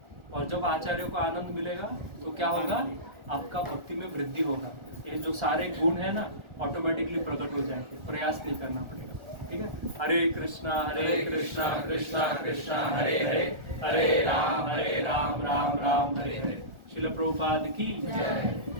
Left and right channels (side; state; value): left; late; 1.4 ms